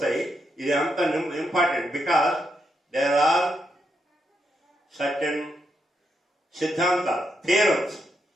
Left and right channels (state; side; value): normal; both; correlation 0.81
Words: ఇది అంత important because there are certain siddhanta, theorems